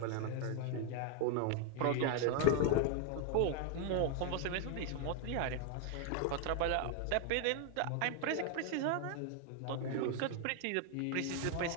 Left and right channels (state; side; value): different; both; correlation 0.01